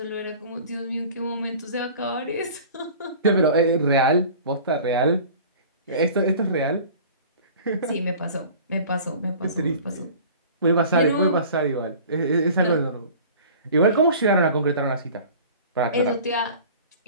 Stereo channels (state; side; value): inverted; both; correlation -0.43